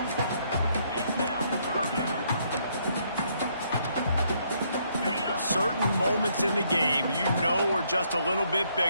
Certain moments in the game you know are just a little bit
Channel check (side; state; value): both; inverted; correlation -0.71